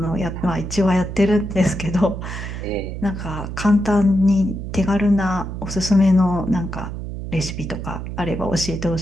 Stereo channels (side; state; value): right; noise; hum, 7 dB below the sound